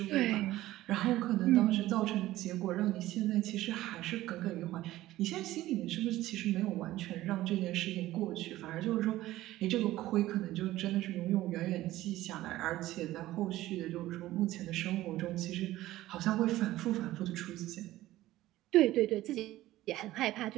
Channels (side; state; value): left; quieter; 15.8 dB